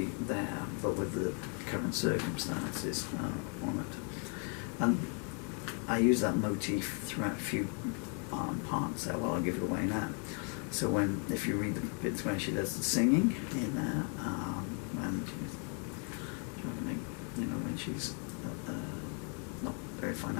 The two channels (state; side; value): quieter; right; 39.8 dB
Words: there, but with the current circumstances on it. And I use that motif throughout a few parts there. Well, I'll give it away now. So if you read the bits when she does the singing in there, when she's trying to make, when she's not very